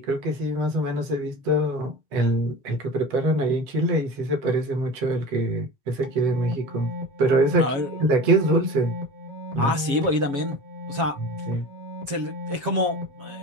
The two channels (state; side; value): late; left; 7.3 ms